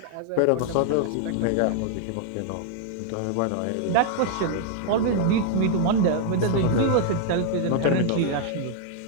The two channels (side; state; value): both; different; correlation 0.00